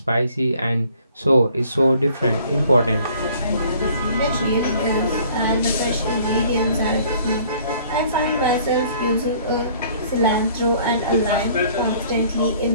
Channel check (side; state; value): both; inverted; correlation -0.56